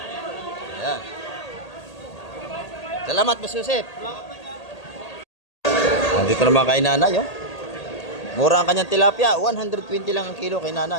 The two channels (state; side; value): late; right; 1.8 ms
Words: Ayan. Salamat, Boss Joseph. Nandito naman kay nanay, oh. Mura ang kanyang tilapia. 120 lang ang kilo kay